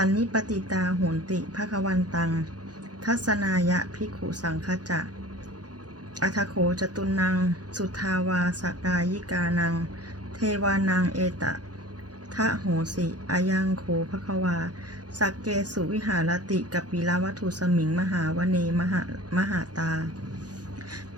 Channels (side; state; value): left; late; 0.69 ms